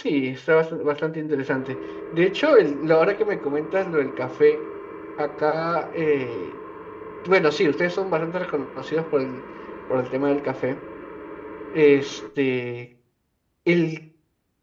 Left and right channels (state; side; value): identical; both; correlation 1.00